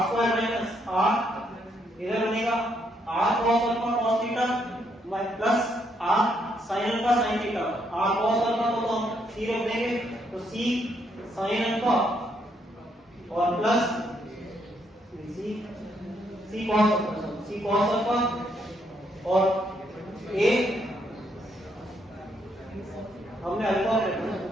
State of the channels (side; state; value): both; normal; correlation 0.74